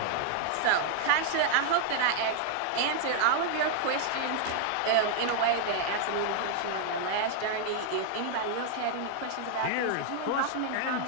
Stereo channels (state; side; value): different; both; correlation 0.00